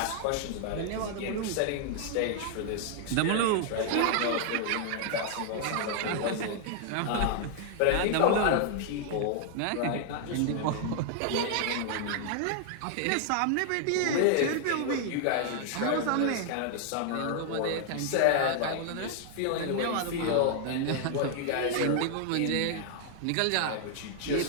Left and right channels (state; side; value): different; both; correlation 0.00